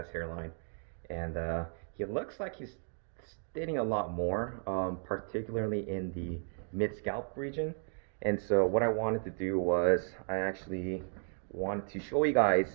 hairline, and he looks like he's thinning a lot more, particularly in the mid-scalp region. And so what I wanted to do was I actually wanted to show you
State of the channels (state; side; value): silent; left; 55 dB below the other